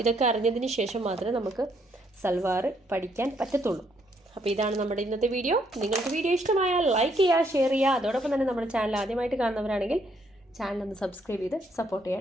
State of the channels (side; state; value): both; normal; correlation 0.71